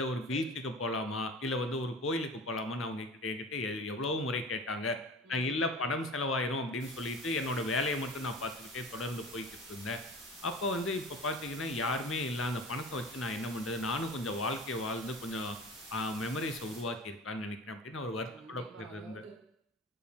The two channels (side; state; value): both; normal; correlation 0.37